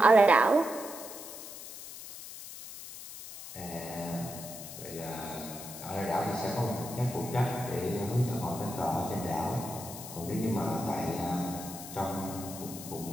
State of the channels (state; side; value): noise; left; hiss, 12 dB below the sound